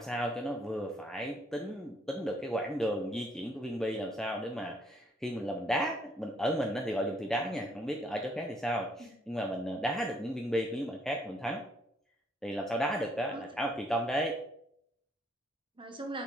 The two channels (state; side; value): normal; both; correlation 0.67